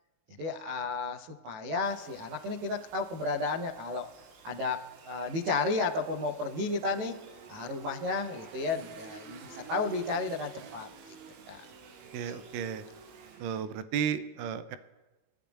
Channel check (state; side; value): late; left; 18 ms